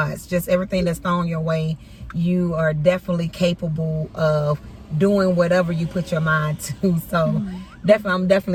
Just everything that's thrown your way, you are definitely capable of doing whatever you put your mind to. So definitely, I'm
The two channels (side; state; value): both; identical; correlation 1.00